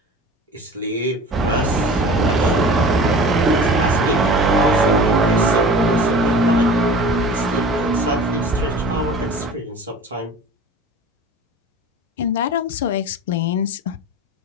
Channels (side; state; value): both; normal; correlation 0.39